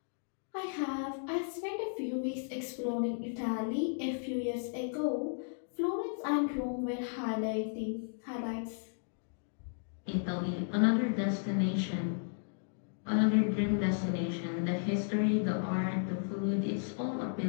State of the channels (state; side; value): silent; right; digital silence